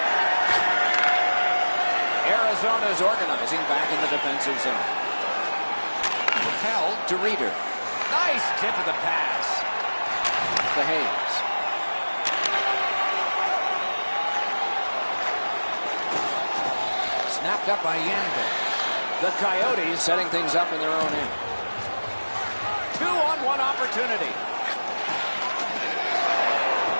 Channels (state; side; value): inverted; both; correlation -1.00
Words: Arizona's organizing back in the defensive zone. Propelled to Reeder. Nice tip of the pass. To Hayes. Snapped up by Yanville. The Coyotes setting things up in their own end. 2-on-1 opportunity.